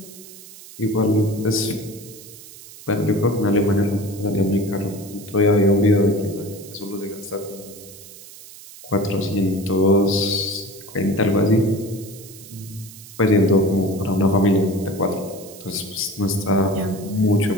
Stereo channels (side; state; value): right; noise; hiss, 18 dB below the sound